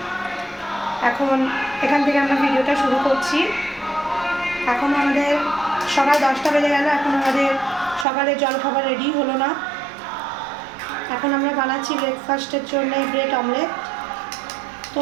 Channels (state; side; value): drops out; left; at 8.1 s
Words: এখন এখান থেকে আমরা ভিডিওটা শুরু করছি। এখন আমাদের সকাল 10টা বেজে গেল, এখন আমাদের সকালে জলখাবার রেডি হলো না। এখন আমরা বানাচ্ছি ব্রেকফাস্টের জন্য ব্রেড অমলেট।